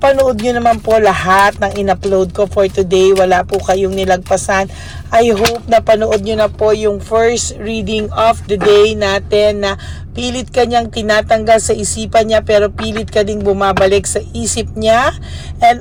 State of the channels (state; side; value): identical; both; correlation 1.00